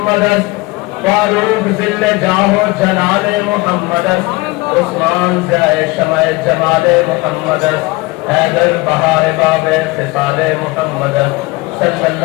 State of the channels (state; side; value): quieter; right; 22.7 dB